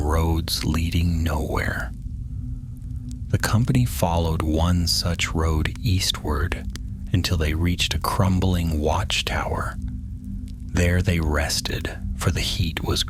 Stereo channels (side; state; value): both; identical; correlation 1.00